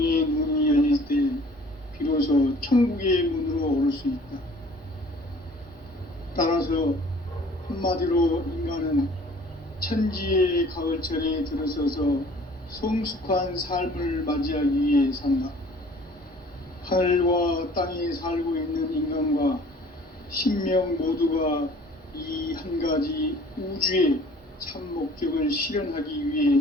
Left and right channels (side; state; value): both; normal; correlation 0.51